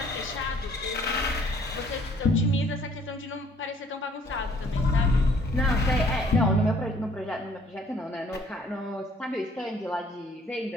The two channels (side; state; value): both; normal; correlation 0.60